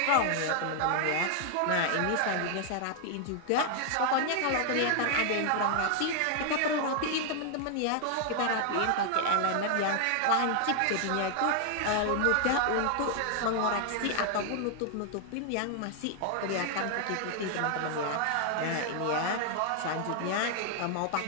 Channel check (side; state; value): both; different; correlation 0.00